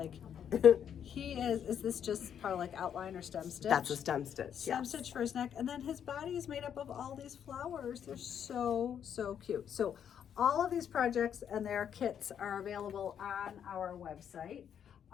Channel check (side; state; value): right; quieter; 8.7 dB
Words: he is this just part of like outline or stem stitch? That's a stem stitch, Stem yes. stitch for his neck, and then his body is made up of all these flowers. They're so cute. So all of these projects and their kits are available on our website.